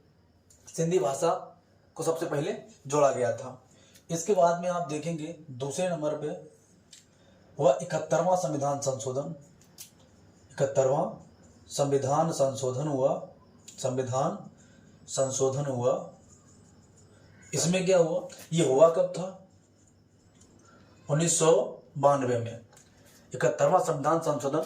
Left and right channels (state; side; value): identical; both; correlation 1.00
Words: सिंधी भाषा को सबसे पहले जोड़ा गया था। इसके बाद में आप देखेंगे दूसरे नंबर पे हुआ 71वां संविधान संशोधन। 71वां संविधान संशोधन हुआ, संविधान संशोधन हुआ। इसमें क्या हुआ, ये हुआ कब था, 1992 में। 71वां संविधान